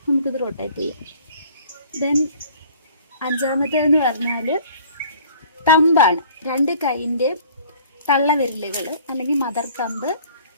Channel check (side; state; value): both; inverted; correlation -0.52